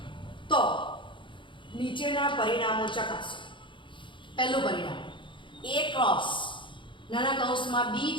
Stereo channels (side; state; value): right; late; 0.24 ms